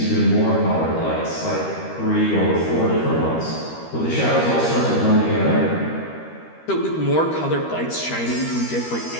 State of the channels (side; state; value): right; late; 13 ms